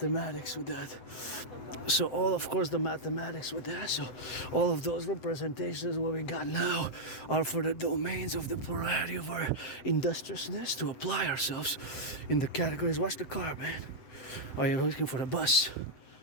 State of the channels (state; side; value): late; right; 7.6 ms